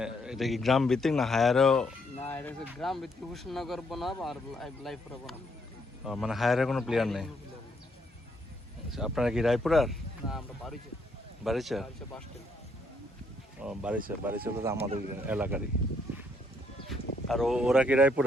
এটা কি গ্রাম ভিত্তিক না হায়ারও? না, এটা হচ্ছে গ্রাম ভিত্তিক মুর্শিদনগর বনাম আর রায়পুরা বনাম। মানে হায়ারে কোনো প্লেয়ার নেই। আচ্ছা, আপনারা কি রায়পুরার? না, আমরা বাড়িতে বারিচা? Bus stand. ও বারিচা, বারিচা তো আমাদের এলাকারই। আর ওরা কি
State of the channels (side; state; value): both; normal; correlation 0.72